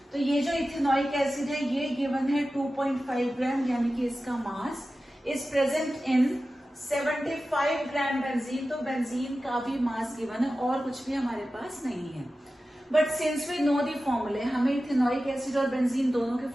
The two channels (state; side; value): normal; both; correlation 0.94